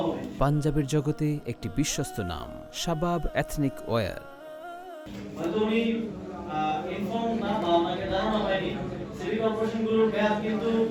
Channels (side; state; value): both; identical; correlation 1.00